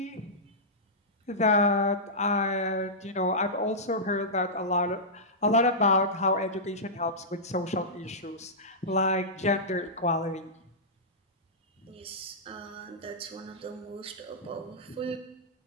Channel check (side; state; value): both; normal; correlation -0.13